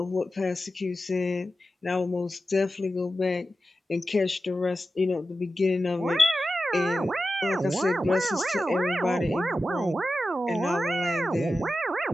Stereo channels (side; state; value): both; normal; correlation 0.92